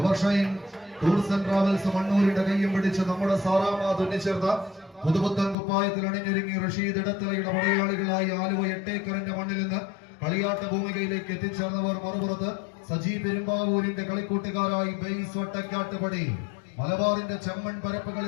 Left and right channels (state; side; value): drops out; right; at 5.6 s